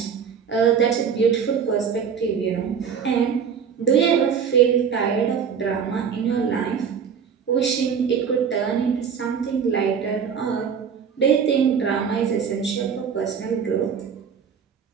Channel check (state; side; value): quieter; left; 7.0 dB